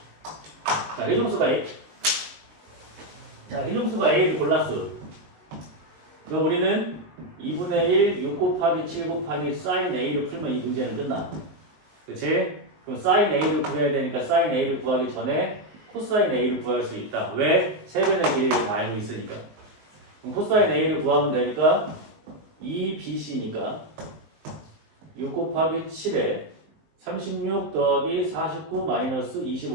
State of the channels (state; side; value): late; left; 19 ms